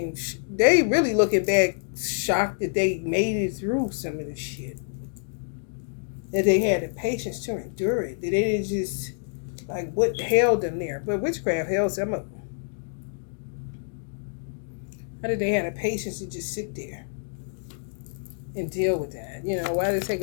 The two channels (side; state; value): right; silent; digital silence